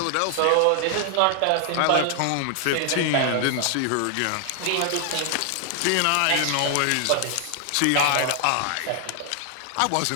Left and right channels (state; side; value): different; both; correlation 0.00